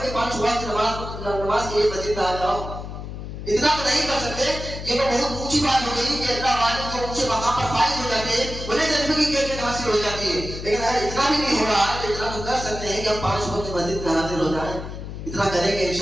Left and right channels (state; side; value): noise; left; hum, 9 dB below the sound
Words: کہ 5 وقت نماز کے لیے مسجد میں آ جاؤ. اتنا تو نہیں کر سکتے. یہ تو بہت اونچی بات ہو گئی کہ اللہ والے جو اونچے مقام پر فائز ہو جاتے ہیں انہیں جذبے کی کیفیت حاصل ہو جاتی ہے. لیکن اگر اتنا بھی نہیں ہو رہا ہے تو اتنا تو کر سکتے ہیں کہ ہم 5 وقت مسجد میں حاضر ہو جائیں. اتنا کریں گے